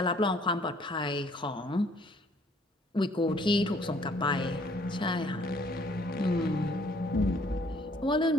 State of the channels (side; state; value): both; normal; correlation 0.61